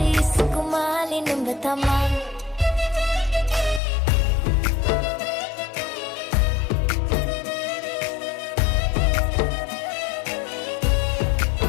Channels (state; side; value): drops out; right; at 3.8 s